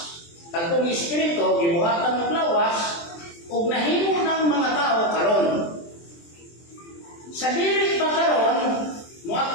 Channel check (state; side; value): late; right; 23 ms